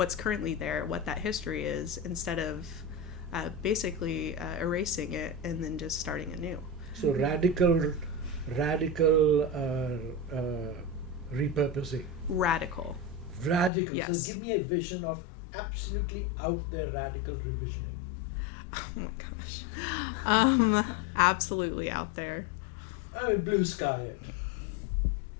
currently there, what that history is, instead of basically erasing it and then just starting anew. So radical repurposing. Radical. Yes. So give me a vision of absolutely out there radical revisioning. Oh my gosh. Absolutely out there. I mean, blue sky it.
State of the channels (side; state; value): right; drops out; at 13.7 s